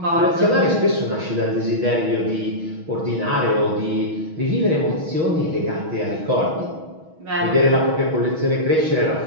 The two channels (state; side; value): late; left; 6.3 ms